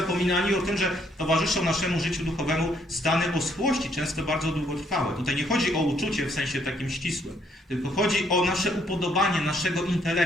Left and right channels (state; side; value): normal; both; correlation 0.69